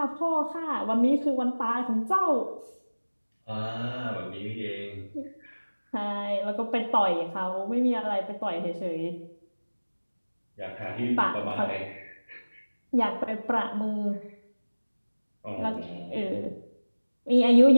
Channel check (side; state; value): both; inverted; correlation -1.00